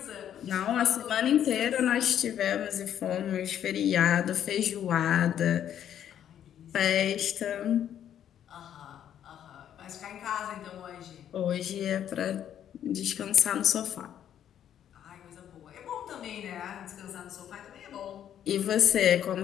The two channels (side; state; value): right; quieter; 10.1 dB